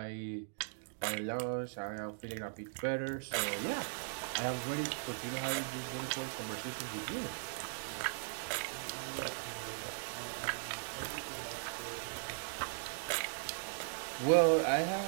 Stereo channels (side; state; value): left; silent; digital silence